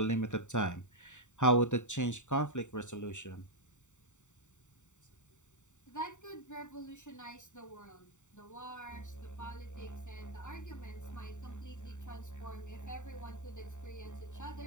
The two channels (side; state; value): right; late; 0.84 ms